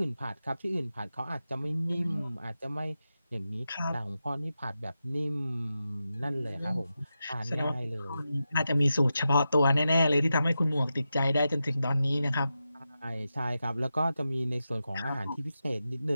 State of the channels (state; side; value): inverted; both; correlation -0.90